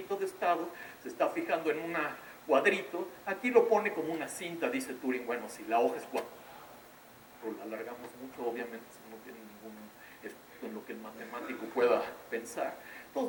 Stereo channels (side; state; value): both; identical; correlation 1.00